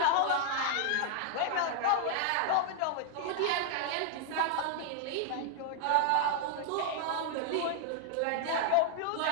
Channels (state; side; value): different; both; correlation 0.00